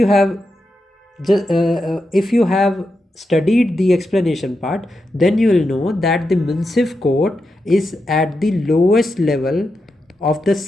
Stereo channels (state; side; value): normal; both; correlation 0.87